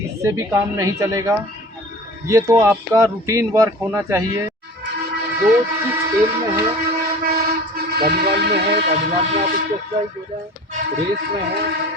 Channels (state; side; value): normal; both; correlation 0.41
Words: भी काम नहीं चलेगा। ये तो आपका रूटीन वर्क होना चाहिए। जो जिस खेल में है, वॉलीबॉल में है, वॉलीबॉल में आप स्पेशलाइज हो जाए, रेस में है